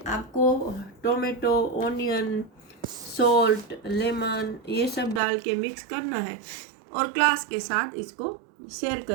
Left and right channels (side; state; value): left; drops out; at 5.2 s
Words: आपको टोमेटो, ओनियन, सॉल्ट, लेमन ये सब डाल के मिक्स करना है और क्लास के साथ इसको शेयर